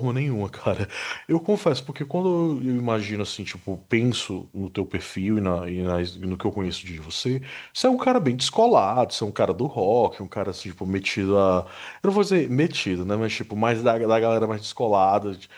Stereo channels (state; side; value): identical; both; correlation 1.00